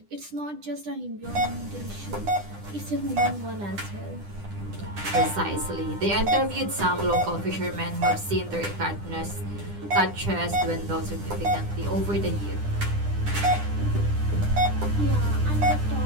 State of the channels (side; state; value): left; late; 10 ms